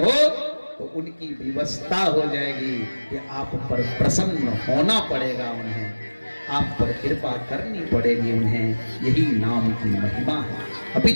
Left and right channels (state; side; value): inverted; both; correlation -1.00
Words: तो उनकी व्यवस्था हो जाएगी कि आप पर प्रसन्न होना पड़ेगा, उन्हें आप पर कृपा करनी पड़ेगी उन्हें। यही नाम की महिमा है। अभी